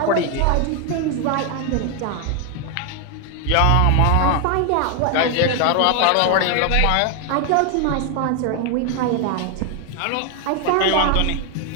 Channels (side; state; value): both; different; correlation 0.01